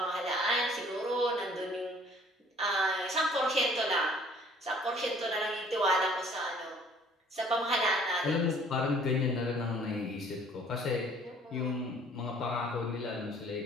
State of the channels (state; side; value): normal; both; correlation 0.56